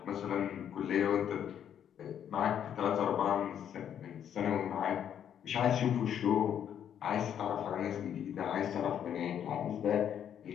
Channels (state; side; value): quieter; right; 9.3 dB